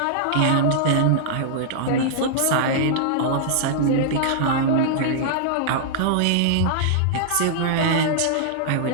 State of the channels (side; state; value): both; different; correlation -0.02